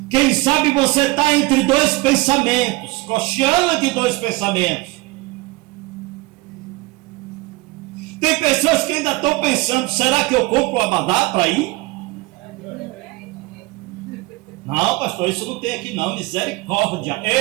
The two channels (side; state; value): left; quieter; 22.1 dB